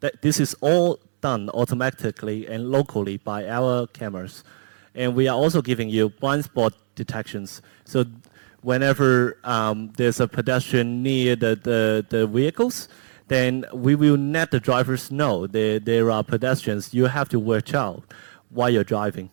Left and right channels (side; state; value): left; silent; digital silence